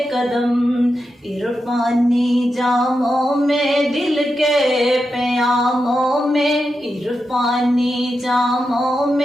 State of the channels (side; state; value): both; normal; correlation 0.88